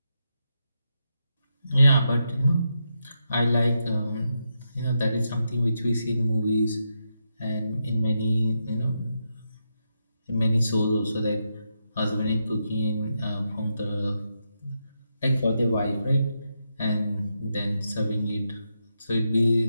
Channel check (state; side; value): inverted; both; correlation -0.84